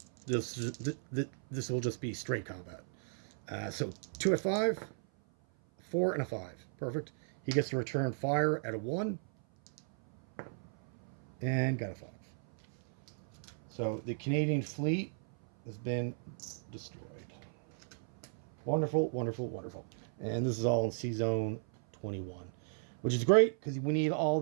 this will just be straight combat. So 2 at 5, 4 and a 5. Perfect. He gets to return fire at a 1 and got a 5. So the Canadian fleet has been destroyed. Wonderful, wonderful, wonderful. And this is all in Sea Zone 21, which is great because we need all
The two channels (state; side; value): silent; left; 54 dB below the other